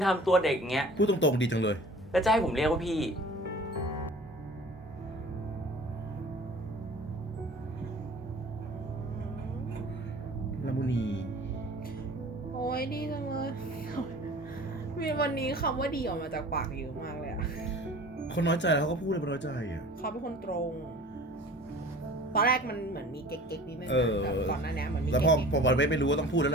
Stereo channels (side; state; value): both; normal; correlation 0.44